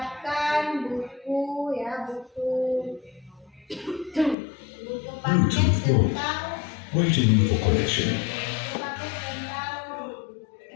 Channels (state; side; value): drops out; right; at 4.4 s